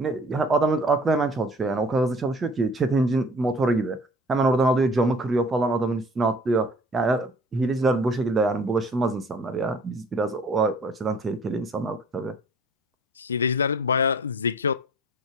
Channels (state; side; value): normal; both; correlation 0.49